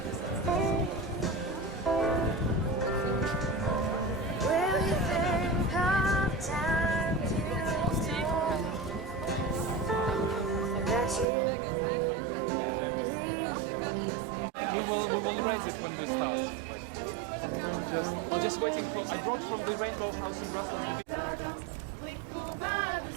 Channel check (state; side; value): drops out; left; at 11.2 s